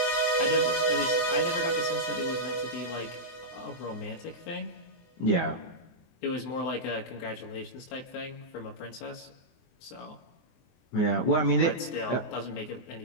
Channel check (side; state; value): right; late; 24 ms